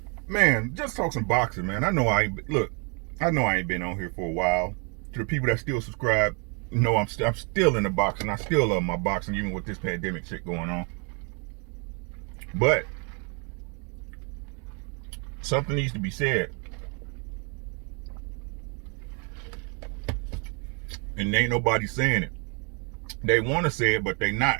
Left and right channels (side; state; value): left; quieter; 35.7 dB